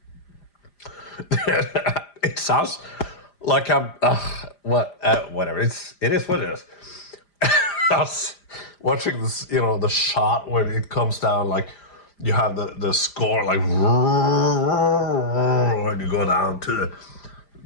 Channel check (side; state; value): right; late; 5.0 ms